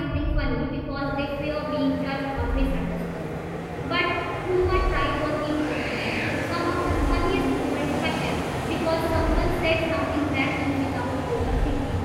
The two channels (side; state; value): both; identical; correlation 1.00